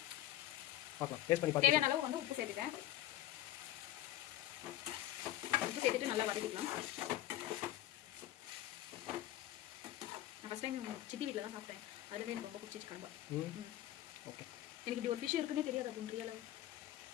பார்க்கலாம், டேஸ்ட் பண்ணி பார்க்கலாம். தேவையான அளவு வந்து உப்பு சேர்த்துட்டேன். உப்பு சேர்த்துட்டு நல்லா வதக்கிக்கலாம். நான் ஃபஸ்ட் டைம் சித்தி வீட்டில் தான் சாப்பிட்டேன். அதுலேயே எனக்கு ரொம்ப பிடிச்சிச்சு கடம்பா. ஓகே. எனக்கு இப்படி ஒரு ஃபிஷ் இருக்குன்னே தெரியாது அப்படின்ற அளவு.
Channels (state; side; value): quieter; right; 14.5 dB